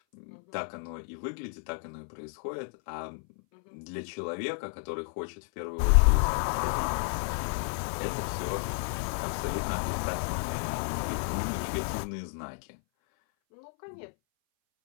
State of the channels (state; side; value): silent; right; 57 dB below the other